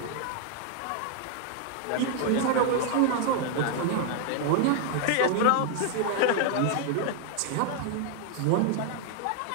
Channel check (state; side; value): different; both; correlation 0.00